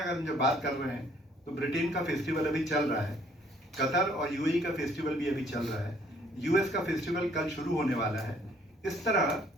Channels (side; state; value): both; normal; correlation 0.62